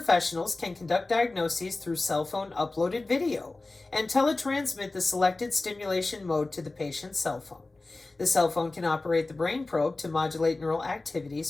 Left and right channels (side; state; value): right; quieter; 3.2 dB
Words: can conduct diagnoses through cell phone uploaded video and teletransmit the selected stimulation mode to the patient's cell phone. The cell phone can operate the brain probe to modulate neural activities